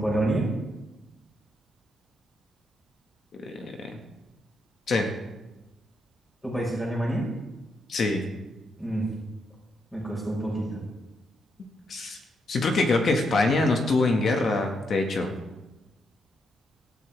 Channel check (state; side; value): normal; both; correlation 0.79